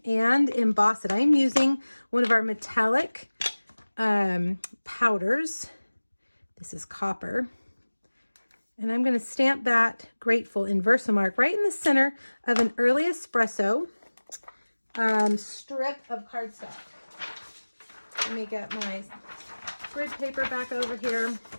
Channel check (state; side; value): inverted; both; correlation -1.00